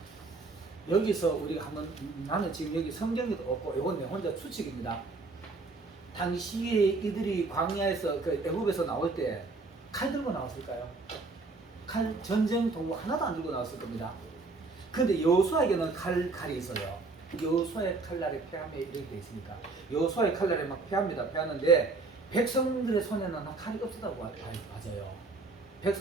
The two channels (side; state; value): left; quieter; 3.7 dB